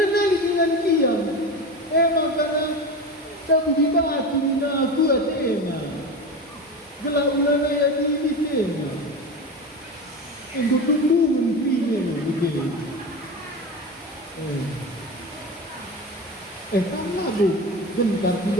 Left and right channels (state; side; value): normal; both; correlation 0.25